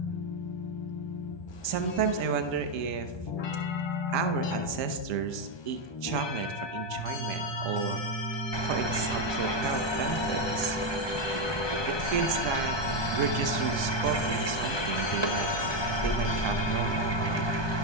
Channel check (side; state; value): right; late; 1.2 ms